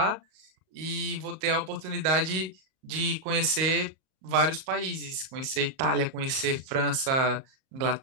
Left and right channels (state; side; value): late; left; 37 ms